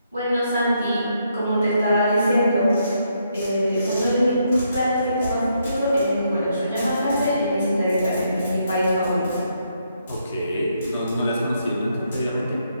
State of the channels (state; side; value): inverted; both; correlation -0.76